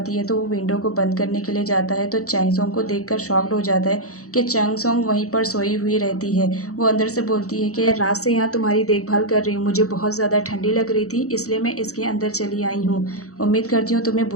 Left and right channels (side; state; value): right; late; 0.65 ms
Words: है, तो वो विंडो को बंद करने के लिए जाता है। तो चैंग सोंग को देखकर शॉक्ड हो जाता है कि चैंग सोंग वहीं पर सोई हुई रहती है। वो अंदर से बोलती है कि रात से यहाँ तुम्हारी देखभाल कर रही हूँ, मुझे बहुत ज़्यादा ठंडी लग रही थी, इसलिए मैं इसके अंदर चली आई हूँ। उम्मीद करती हूँ तुम्हें